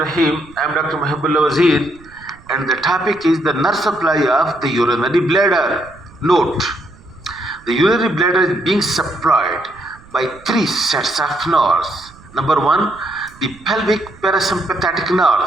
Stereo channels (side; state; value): right; noise; rumble, 24 dB below the sound